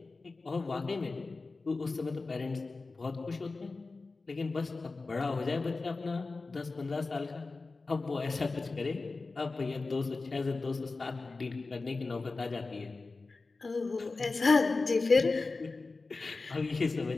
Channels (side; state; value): right; quieter; 3.8 dB